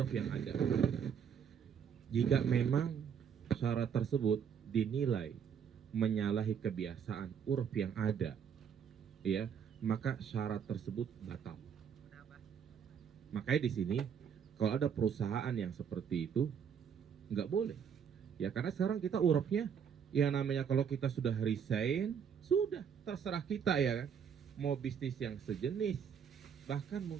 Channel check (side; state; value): left; quieter; 7.6 dB